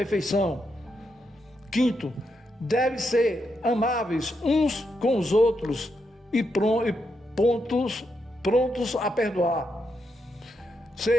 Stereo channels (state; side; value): normal; both; correlation 0.82